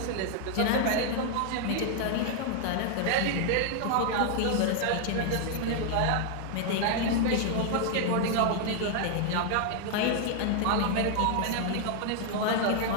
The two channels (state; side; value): different; both; correlation 0.00